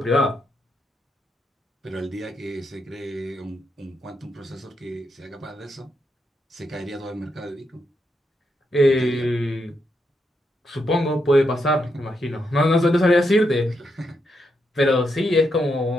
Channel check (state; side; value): normal; both; correlation 0.82